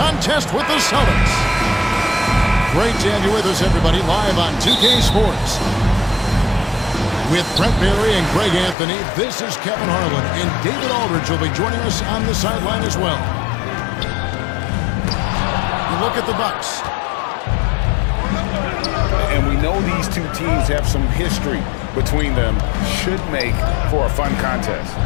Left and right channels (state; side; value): drops out; right; at 8.8 s